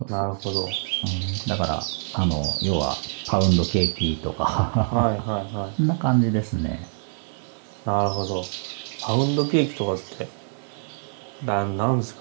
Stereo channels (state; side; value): silent; left; digital silence